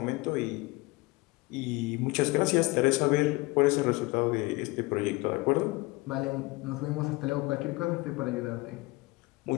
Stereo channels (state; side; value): quieter; right; 23.0 dB